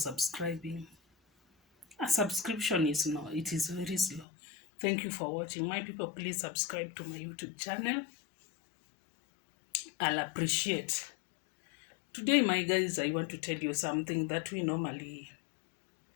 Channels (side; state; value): right; drops out; at 4.2 s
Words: A subscription is no, it is very slow. Thank you for watching. My people, please subscribe to my YouTube channel. I'll appreciate. Today, my guys, I want to tell you something that we normally